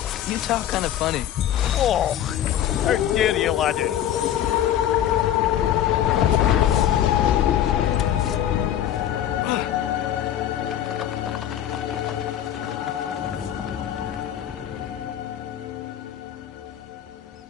you talk kind of funny. Oh, how dare you, laddie?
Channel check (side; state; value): right; quieter; 10.9 dB